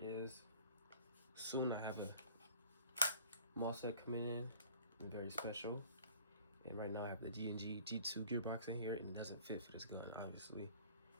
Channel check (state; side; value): inverted; both; correlation -0.49